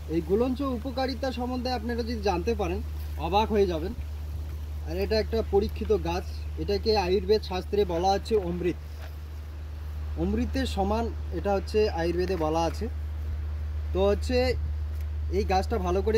এই গুলঞ্চ উপকারিতা সম্বন্ধে আপনারা যদি জানতে পারেন অবাক হয়ে যাবেন। আর এটা একটা পরীক্ষিত গাছ। এটাকে আয়ুর্বেদ শাস্ত্রে বলা হচ্ছে অমৃত, অমৃতের সমান এটা হচ্ছে আয়ুর্বেদে বলা আছে। তো হচ্ছে এই গাছটা ভালো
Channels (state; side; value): identical; both; correlation 1.00